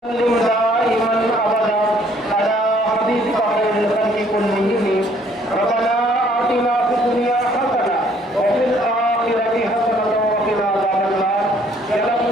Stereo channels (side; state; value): both; normal; correlation 0.62